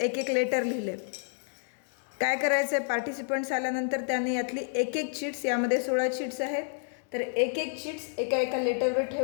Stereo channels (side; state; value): right; silent; digital silence